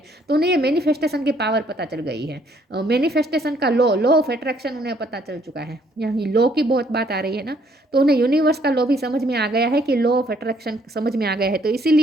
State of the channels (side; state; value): both; normal; correlation 0.66